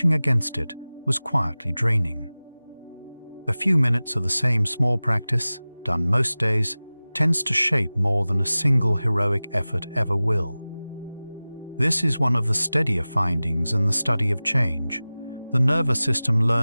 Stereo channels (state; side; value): inverted; both; correlation -0.98